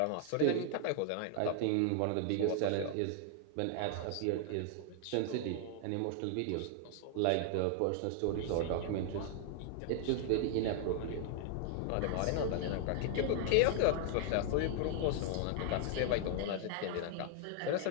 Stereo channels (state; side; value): different; both; correlation 0.00